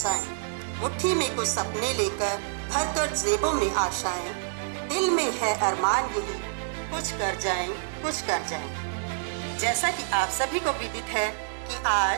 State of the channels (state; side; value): silent; left; digital silence